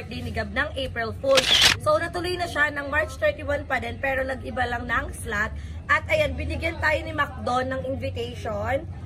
ni Gab ng April Fool. So natuloy na siya ng March 31 pa din pero nag-iba lang ng slot. At ayan, binigyan tayo ni McDo ng invitation.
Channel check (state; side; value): identical; both; correlation 1.00